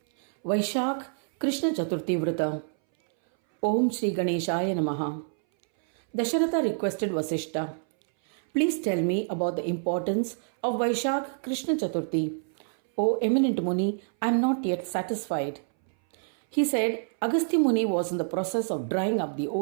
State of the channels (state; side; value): silent; left; 60 dB below the other